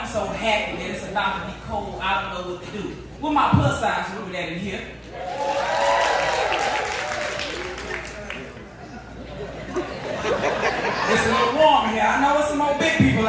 so happy that it's about to be cold. I don't know what to do. With my plus size women that in here. It's a little warm here. I know there's some more big people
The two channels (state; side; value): identical; both; correlation 1.00